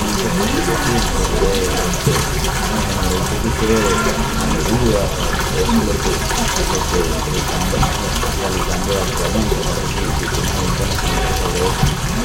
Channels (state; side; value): identical; both; correlation 1.00